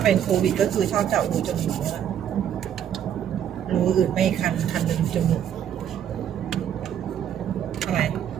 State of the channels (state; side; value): quieter; left; 9.6 dB